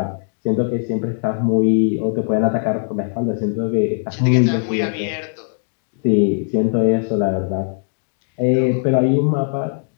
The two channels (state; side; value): silent; right; digital silence